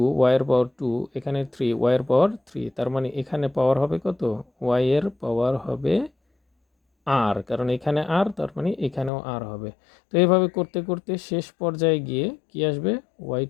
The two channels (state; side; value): drops out; right; at 9.1 s